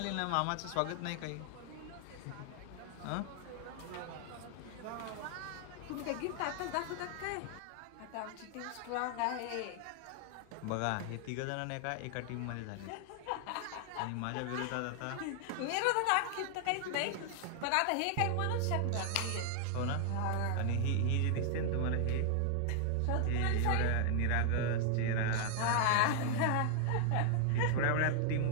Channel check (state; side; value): different; both; correlation 0.00